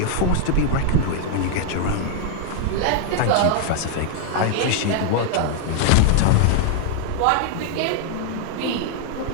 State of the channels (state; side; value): different; both; correlation 0.00